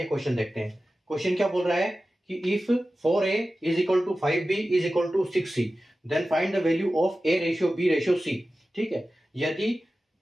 क्वेश्चन देखते हैं। क्वेश्चन क्या बोल रहा है कि if 4a is equal to 5b is equal to 6c then find the value of a ratio b ratio c। ठीक है, यदि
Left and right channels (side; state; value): both; normal; correlation 0.95